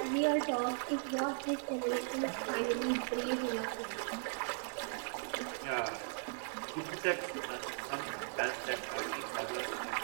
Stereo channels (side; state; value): left; silent; 53 dB below the other